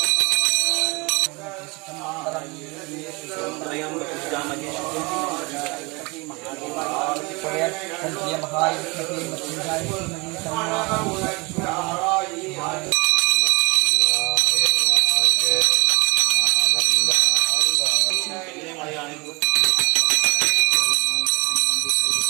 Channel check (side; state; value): left; quieter; 27.1 dB